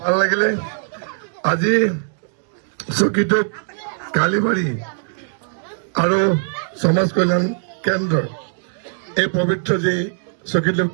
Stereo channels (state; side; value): silent; left; digital silence